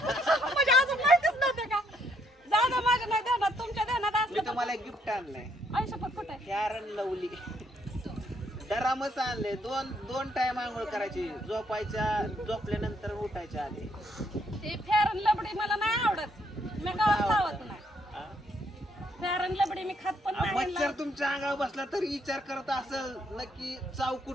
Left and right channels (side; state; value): both; normal; correlation 0.71